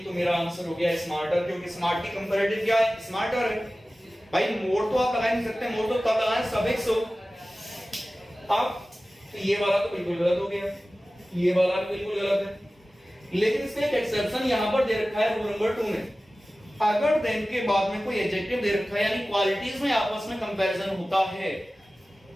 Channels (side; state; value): both; normal; correlation 0.96